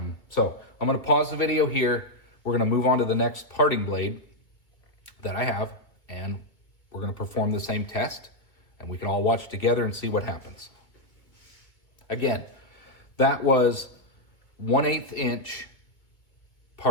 So I'm going to pause the video here. We're going to move on to the next parting blade that I have, and we're going to perform the same test, and we can all watch together and see what happens. Again, that was 1/8 inch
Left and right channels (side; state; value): right; late; 2.2 ms